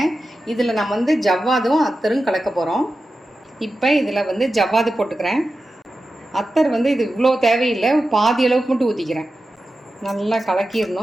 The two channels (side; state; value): both; normal; correlation 0.92